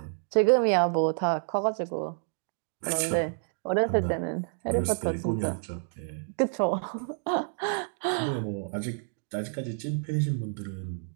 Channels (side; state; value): left; silent; digital silence